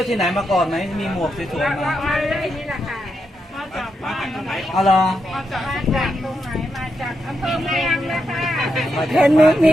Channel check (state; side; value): normal; both; correlation 0.84